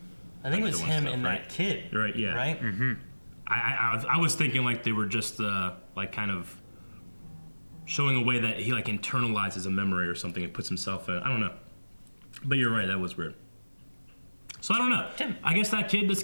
I think it was him and that kid. Right? Yeah. Right. Mm-hmm. I was thinking like they were just like kind of showing a way that he like internalizes a memory or something and puts himself in. I don't know. But you're right, that was weird. So I don't know. Tim. I guess that kid just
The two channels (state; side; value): inverted; both; correlation -1.00